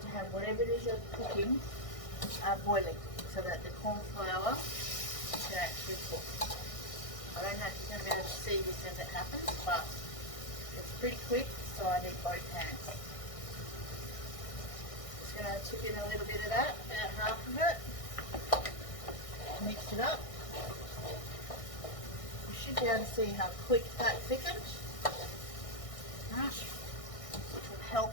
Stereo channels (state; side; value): late; right; 1.6 ms